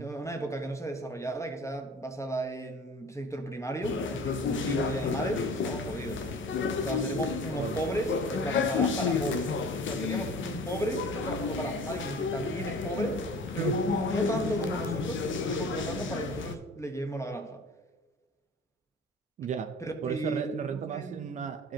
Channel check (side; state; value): both; normal; correlation 0.43